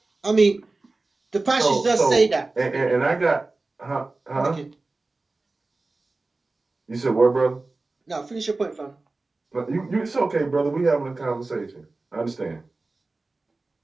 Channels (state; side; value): quieter; left; 3.4 dB